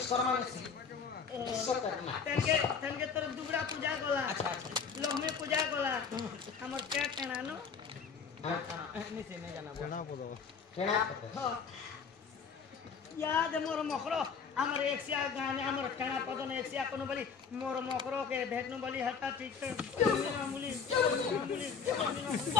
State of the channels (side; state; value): right; quieter; 6.1 dB